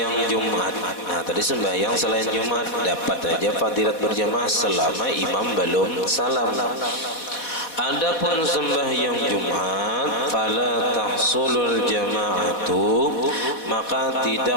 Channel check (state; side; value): late; right; 4.1 ms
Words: Jumat. Nah tadi sembahyang selain Jumat dapat aja fadilat berjamaah selama imam belum salam. Adapun sembahyang Jumat, fala tahsulul jama'atu, maka